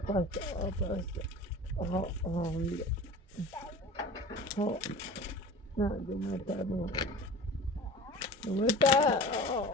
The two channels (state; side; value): normal; both; correlation 0.38